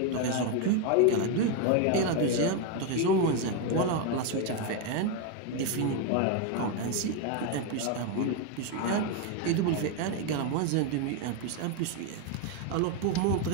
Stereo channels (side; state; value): both; different; correlation 0.02